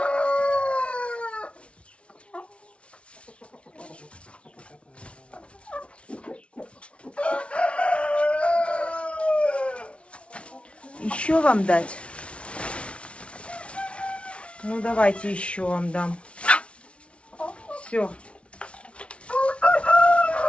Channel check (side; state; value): right; late; 0.060 ms